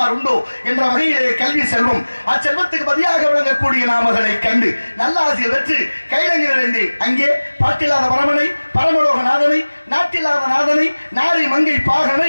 உண்டோ என்ற வகையிலே கல்வி செல்வம், அச்செல்வத்துக்கு பதியாக விளங்கக்கூடிய நாமகளை கண்டு நல்லாசியை வெற்று கைலங்கிருந்தேன். அங்கே பாட்டில்லாத பரமனை, பரமலோகநாதனை, நாட்டில்லாத நாதனை, நாரி மங்கை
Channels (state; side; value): inverted; both; correlation -1.00